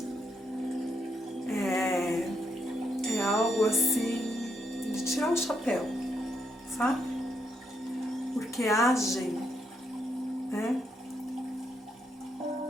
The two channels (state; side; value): normal; both; correlation 0.77